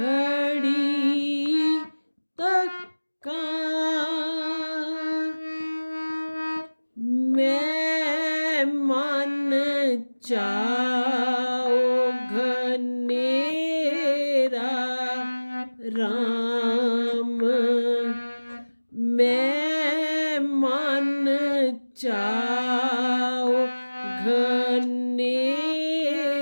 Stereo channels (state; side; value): inverted; both; correlation -1.00